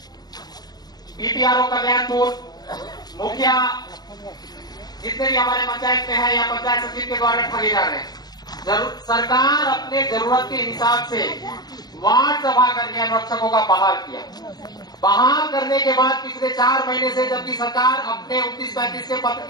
बीपीआरओ कल्याणपुर मुखिया जितने भी हमारे पंचायत में है या पंचायत सचिव के द्वारा ठगे जा रहे हैं। सरकार अपने जरूरत के हिसाब से वार्ड सभा करके अनुरक्षकों का बहाल किया। बहाल करने के बाद पिछले 4 महीने से जबकि सरकार अपने 29-35 के पत्र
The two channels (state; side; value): late; right; 0.19 ms